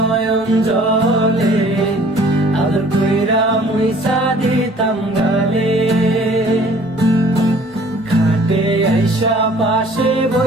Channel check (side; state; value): both; normal; correlation 0.53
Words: জলে, আদর কইরা মুইসা দিতাম গালে। খাটে আইসা পাশে